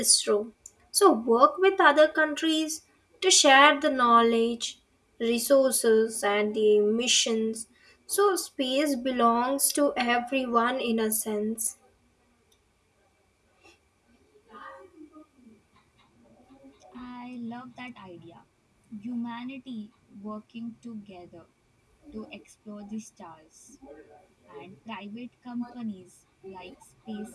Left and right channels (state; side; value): identical; both; correlation 1.00